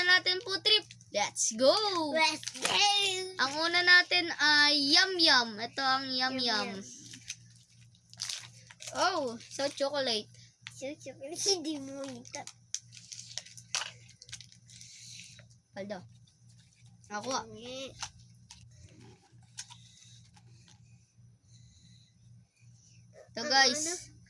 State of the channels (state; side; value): identical; both; correlation 1.00